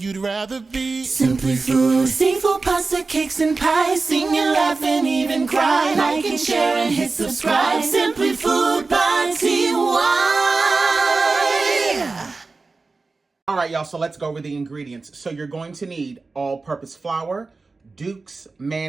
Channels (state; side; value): quieter; left; 3.9 dB